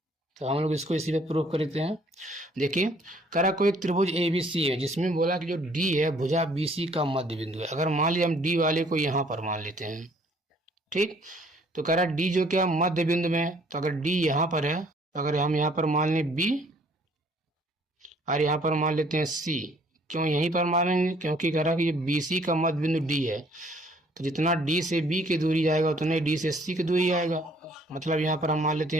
तो हम लोग इसको इसी पे प्रूफ करते हैं। देखिए करा कोई त्रिभुज ABC है, जिसमें बोला कि जो D है भुजा BC का मध्य बिंदु है। अगर मान लीजिए हम D वाले को यहाँ पर मान लेते हैं, ठीक, तो कह रहा D जो क्या मध्य बिंदु में, तो अगर D यहाँ पर है, तो अगर हम यहाँ पर मान लें B और यहाँ पर मान लेते हैं C, क्यों यहीं पर मानेंगे, क्योंकि कह रहा कि ये BC का मध्य बिंदु D है, तो जितना D से B की दूरी जाएगा उतने D से C की दूरी आएगा, मतलब यहाँ पर हम मान लेते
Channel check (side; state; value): both; normal; correlation 0.60